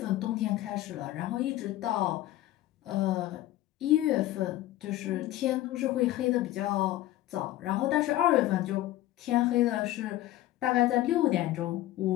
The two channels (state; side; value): quieter; right; 15.2 dB